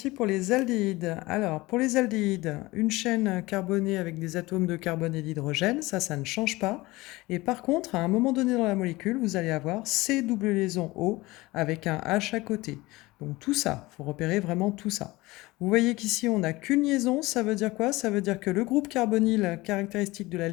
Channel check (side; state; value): right; quieter; 20.7 dB